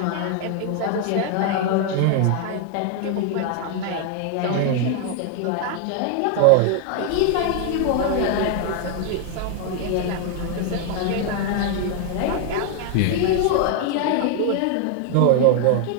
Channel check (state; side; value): different; both; correlation 0.00